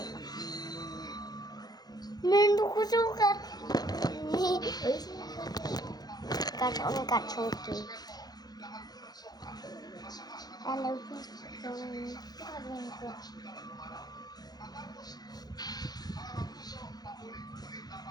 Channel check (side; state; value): right; late; 0.19 ms